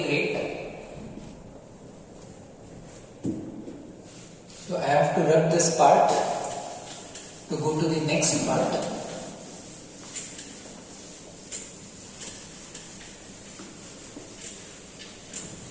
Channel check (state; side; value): identical; both; correlation 1.00